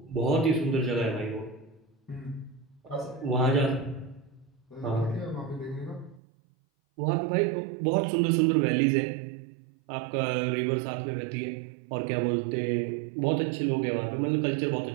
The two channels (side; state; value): left; drops out; at 6.2 s